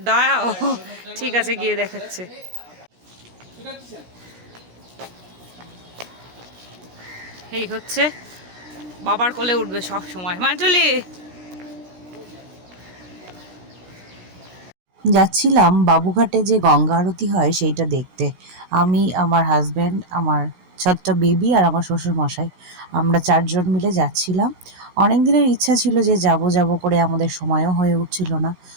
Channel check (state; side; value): late; left; 16 ms